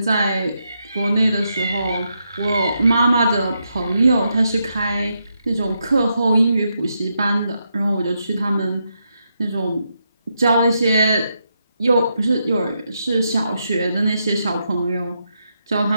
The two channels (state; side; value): inverted; both; correlation -0.82